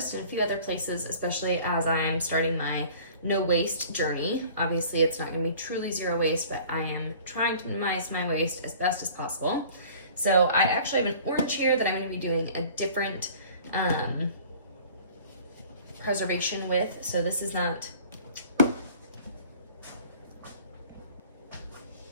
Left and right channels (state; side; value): inverted; both; correlation -0.48